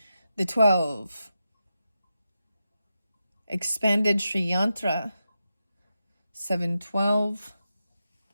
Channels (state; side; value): inverted; both; correlation -0.89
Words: The 12, expanded Sri Yantra, 712,